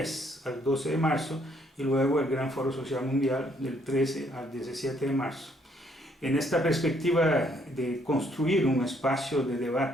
al 12 de marzo y luego el Gran Foro Social Mundial del 13 al 17 de marzo. En esta perspectiva de construir un espacio de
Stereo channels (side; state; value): both; normal; correlation 0.68